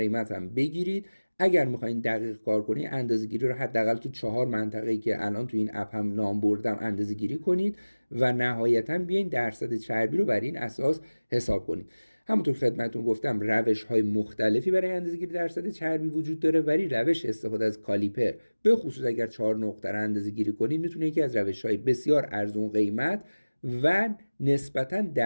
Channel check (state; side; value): inverted; both; correlation -1.00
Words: هم بگیرید. اگر میخواین دقیق کار کنید اندازه‌گیری رو حداقل تو 4 منطقه‌ای که الان تو این اپ هم نام بردم اندازه‌گیری کنید و نهایتاً بیاین درصد چربی رو بر این اساس حساب کنید. همونطور که خدمتتون گفتم روش‌های مختلفی برای اندازه‌گیری درصد چربی وجود داره، ولی روش استفاده از کالیپر به خصوص اگر 4 نقطه رو اندازه‌گیری کنید میتونه یکی از روش‌های بسیار ارزون قیمت و نسبتاً